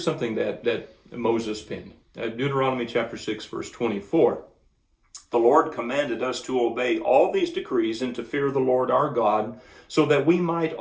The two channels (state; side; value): identical; both; correlation 1.00